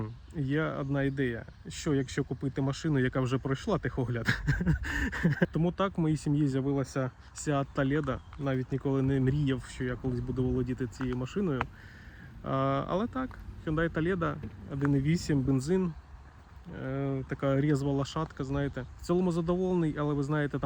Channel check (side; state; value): both; identical; correlation 1.00